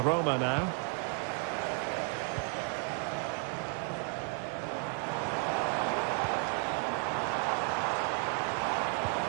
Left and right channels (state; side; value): quieter; left; 38.7 dB